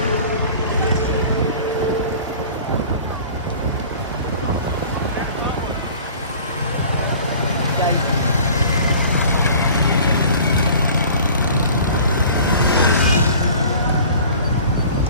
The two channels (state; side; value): inverted; both; correlation -0.45